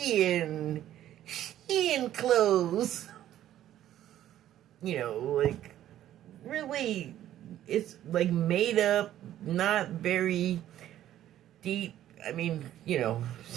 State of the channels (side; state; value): left; quieter; 12.3 dB